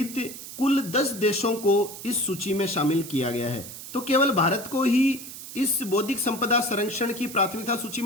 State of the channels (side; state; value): right; noise; hiss, 12 dB below the sound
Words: कुल 10 देशों को इस सूची में शामिल किया गया है। तो केवल भारत को ही इस बौद्धिक संपदा संरक्षण की प्राथमिकता सूची